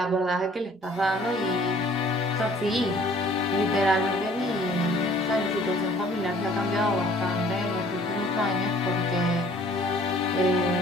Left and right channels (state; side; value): normal; both; correlation 0.55